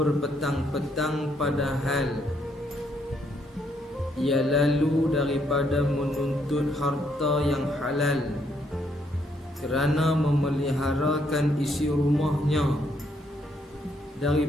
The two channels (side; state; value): both; normal; correlation 0.72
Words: padahal ia lalu daripada menuntut harta yang halal kerana memeliharakan isi rumahnya